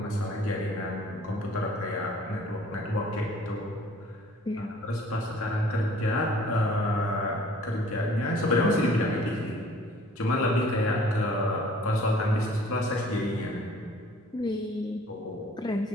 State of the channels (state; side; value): normal; both; correlation 0.53